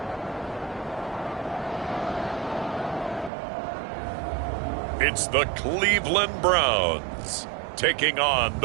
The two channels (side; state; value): left; drops out; at 3.3 s